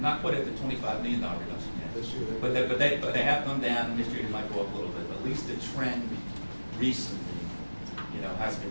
quite at the $25 million reduction yet, This year, but they have come down, and this year they might go up a little bit, but at least the trend recently, has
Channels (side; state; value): both; inverted; correlation -1.00